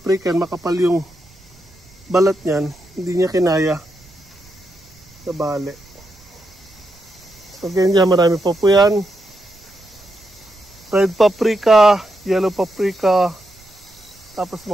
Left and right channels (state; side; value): noise; right; rumble, 26 dB below the sound